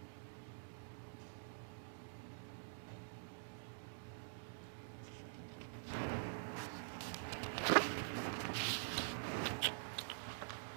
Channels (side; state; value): left; silent; digital silence